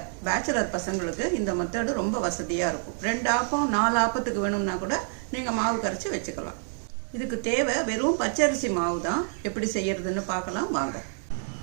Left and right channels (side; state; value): left; silent; 60 dB below the other